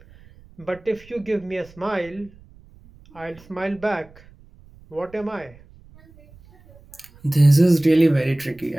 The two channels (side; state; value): right; noise; rumble, 25 dB below the sound